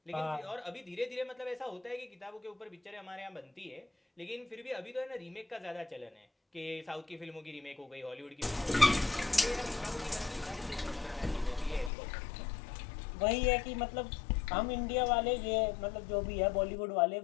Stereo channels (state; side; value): drops out; right; at 11.9 s